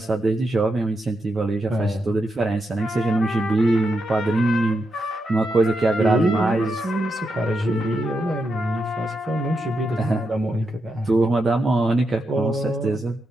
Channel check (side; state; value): both; normal; correlation 0.84